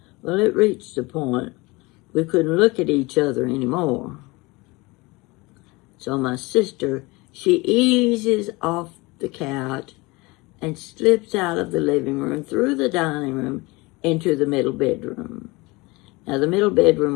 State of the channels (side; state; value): right; quieter; 23.9 dB